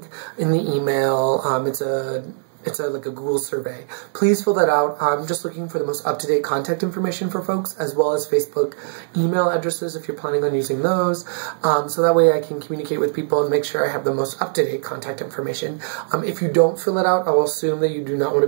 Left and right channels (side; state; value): left; silent; digital silence